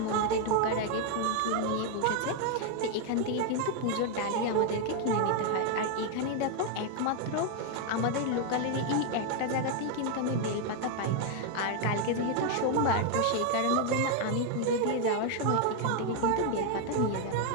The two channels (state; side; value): different; both; correlation 0.01